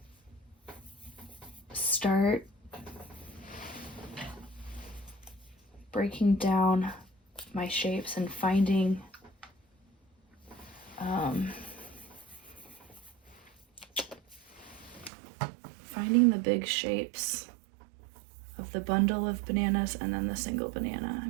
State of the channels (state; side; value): drops out; left; at 15.1 s